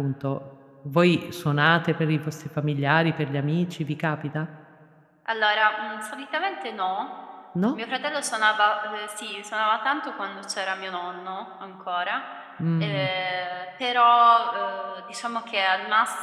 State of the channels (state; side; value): identical; both; correlation 1.00